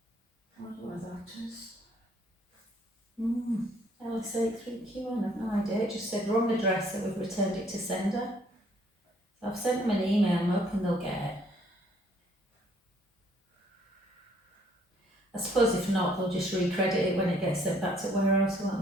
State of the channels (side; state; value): both; normal; correlation 0.63